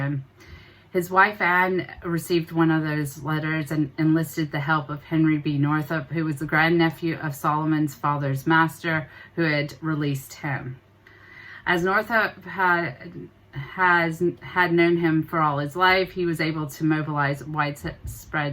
His wife Anne received one of those letters and enlisted the help of Henry B. Northup, who was the grandnephew of Solomon's father's master, who had released him. As Northup had known him for all his life, he was able to mobilize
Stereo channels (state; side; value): identical; both; correlation 1.00